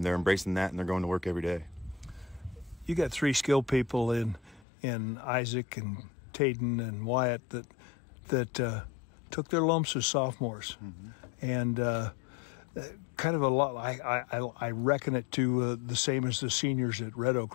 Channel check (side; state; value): right; drops out; at 4.7 s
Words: they're embracing that, and they're going to work every day. You got 3 skilled people in Isaac and Tayden and Wyatt that took their lumps as sophomores, and kind of a lot. I reckon it to the same as the seniors at Red